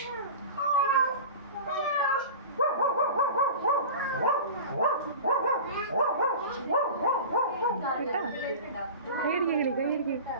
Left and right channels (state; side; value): inverted; both; correlation -0.34